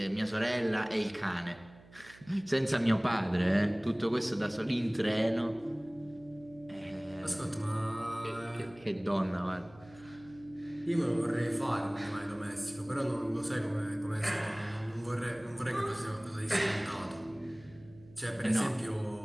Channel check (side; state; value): right; noise; hum, 23 dB below the sound